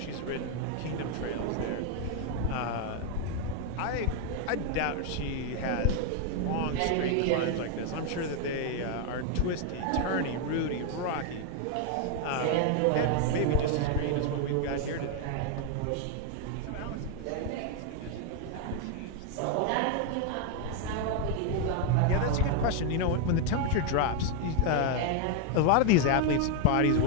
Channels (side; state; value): both; different; correlation 0.01